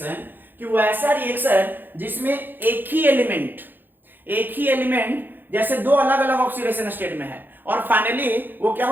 कि वो ऐसा रिएक्शन जिसमें एक ही एलिमेंट जैसे दो अलग अलग ऑक्सीडेशन स्टेट में है और फाइनली वो क्या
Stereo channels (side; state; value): left; late; 0.092 ms